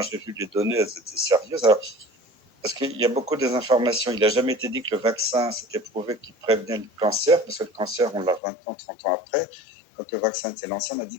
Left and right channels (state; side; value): drops out; right; at 8.4 s